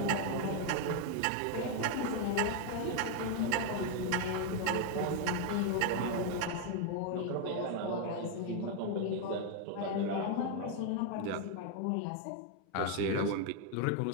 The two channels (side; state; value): both; different; correlation 0.01